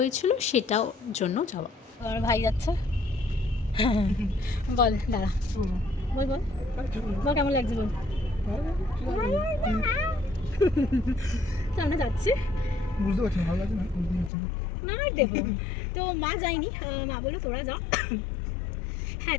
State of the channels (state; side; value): drops out; right; at 14.3 s